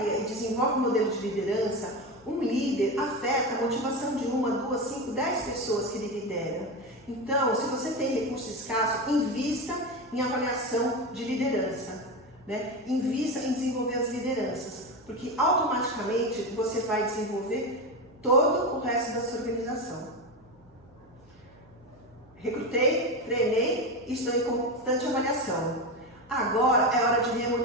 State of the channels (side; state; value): right; noise; hum, 29 dB below the sound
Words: e desenvolve um modelo de liderança, um líder afeta a motivação de 1, 2, 5, 10 pessoas que ele lidera. Então, se você tem recurso escasso, invista em avaliação de liderança. Né? Invista em desenvolver as lideranças, porque automaticamente você vai desenvolver todo o resto da sua organização. Recrutei, treinei e estou em constante avaliação. Agora é hora de